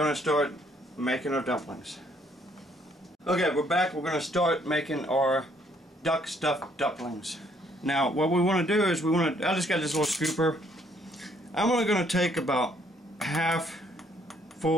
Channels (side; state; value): both; normal; correlation 0.66